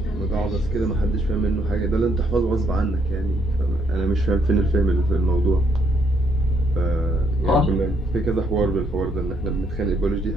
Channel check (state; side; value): normal; both; correlation 0.71